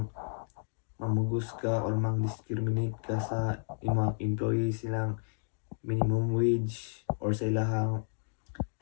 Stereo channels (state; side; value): silent; right; digital silence